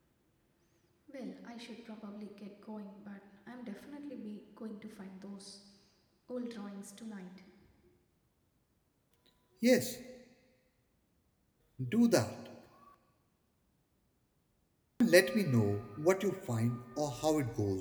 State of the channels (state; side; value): identical; both; correlation 1.00